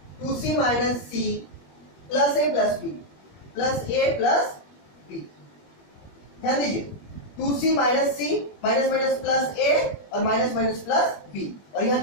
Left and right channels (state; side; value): late; right; 21 ms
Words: 2C minus C plus A plus B plus A plus B, ध्यान दीजिए 2C minus C minus minus plus A और माइनस माइनस प्लस B, और यहाँ